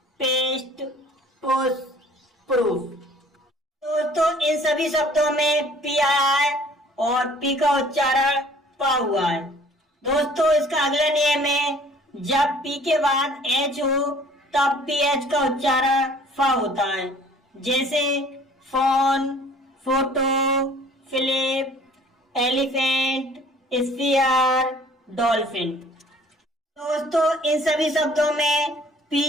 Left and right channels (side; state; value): both; normal; correlation 0.53